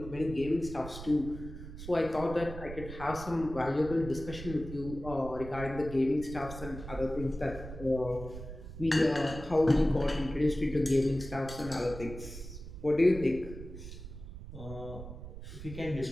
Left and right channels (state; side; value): noise; right; rumble, 11 dB below the sound